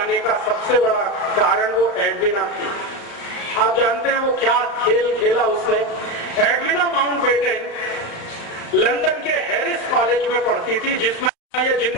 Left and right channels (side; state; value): right; late; 35 ms